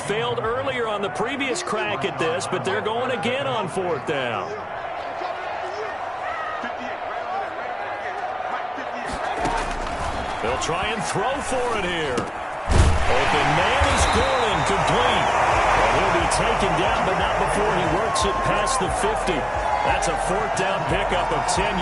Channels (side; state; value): both; identical; correlation 1.00